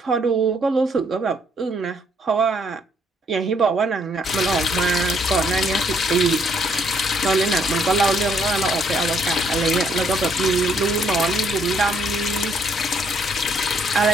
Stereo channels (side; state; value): both; normal; correlation 0.68